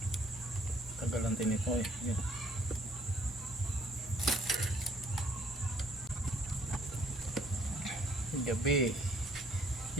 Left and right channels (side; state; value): both; normal; correlation 0.62